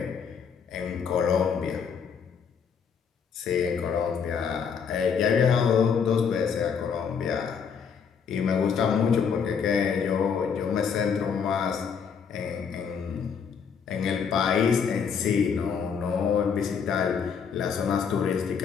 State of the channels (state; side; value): quieter; right; 6.7 dB